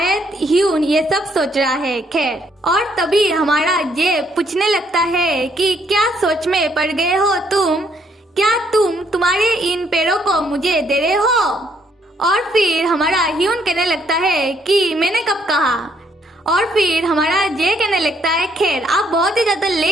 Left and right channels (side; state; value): both; normal; correlation 0.70